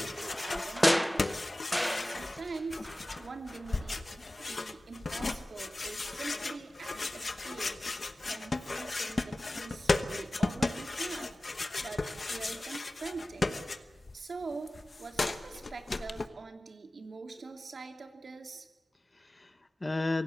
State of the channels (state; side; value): normal; both; correlation 0.97